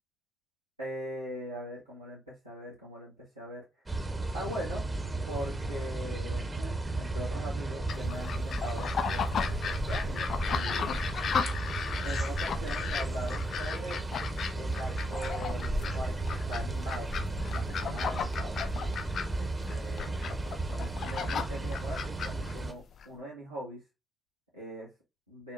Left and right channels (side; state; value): both; normal; correlation 0.78